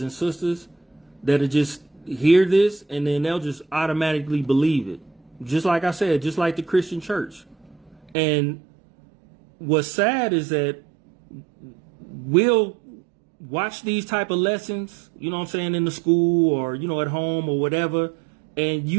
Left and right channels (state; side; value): drops out; left; at 8.2 s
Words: and sisters that'll just hear this and then they'll just automatically believe it. Just like I said, just like the Christian church. And what's sad is that we'll watch these type of lessons, you know what I'm saying, in the school or, at home or whatever. And